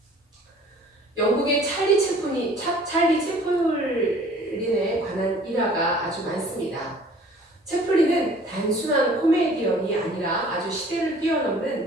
영국의 찰리 채플린에 관한 일화가 아주 많습니다. 채플린은 단순한 코미디언이 아니라 아주 시대를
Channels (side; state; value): both; normal; correlation 0.52